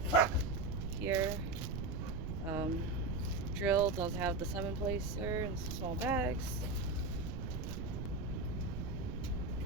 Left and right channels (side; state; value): right; noise; rumble, 3 dB below the sound